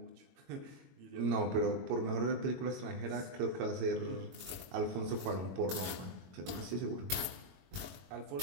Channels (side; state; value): left; late; 22 ms